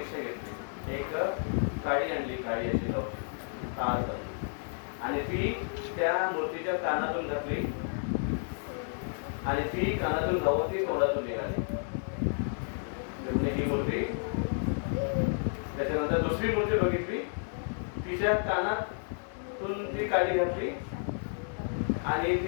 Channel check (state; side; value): silent; right; 57 dB below the other